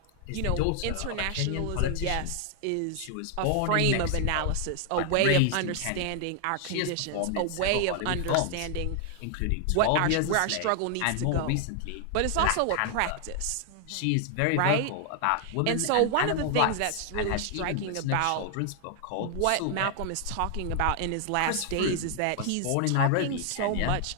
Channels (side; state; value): both; different; correlation 0.00